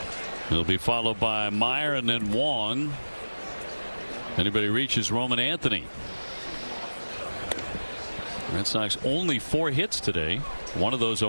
He'll be followed by Meyer and then Wong. Anybody reaches Roman Anthony. Red Sox only 4 hits today. One of those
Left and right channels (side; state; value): both; inverted; correlation -1.00